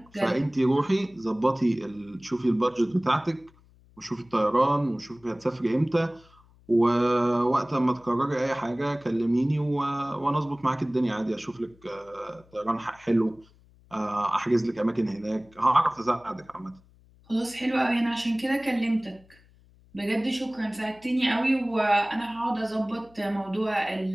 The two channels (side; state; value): left; noise; hum, 28 dB below the sound